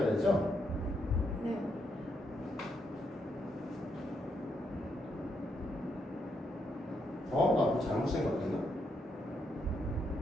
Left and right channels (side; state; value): both; normal; correlation 0.78